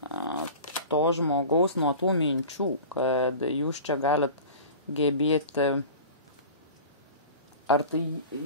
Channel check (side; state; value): both; inverted; correlation -0.37